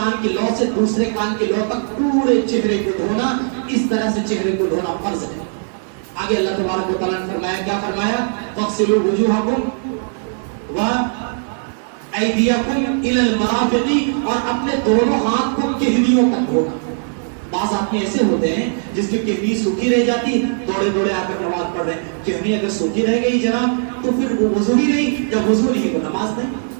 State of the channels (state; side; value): silent; left; digital silence